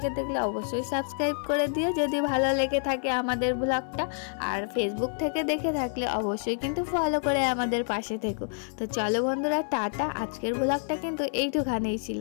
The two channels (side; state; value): right; silent; 59 dB below the other